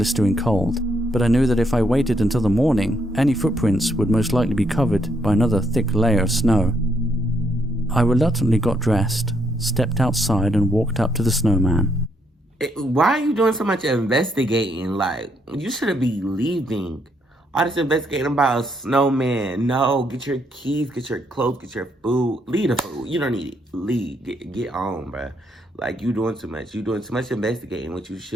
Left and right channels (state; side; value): normal; both; correlation 0.74